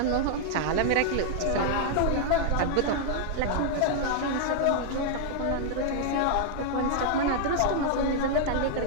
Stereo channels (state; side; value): different; both; correlation -0.01